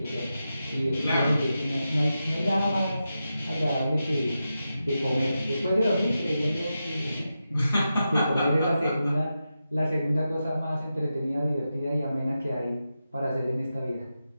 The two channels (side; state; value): both; inverted; correlation -0.90